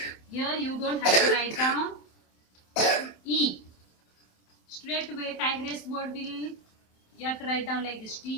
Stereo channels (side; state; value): right; late; 27 ms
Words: here you don't have to write down E. Straight away tigress word will, you have to write down like this.